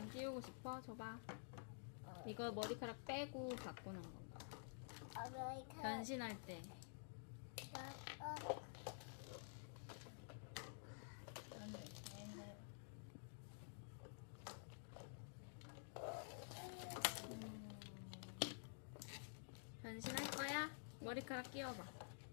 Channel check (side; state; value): right; silent; digital silence